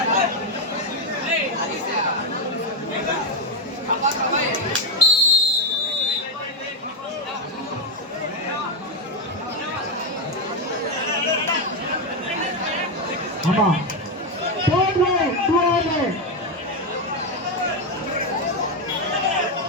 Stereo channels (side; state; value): both; normal; correlation 0.05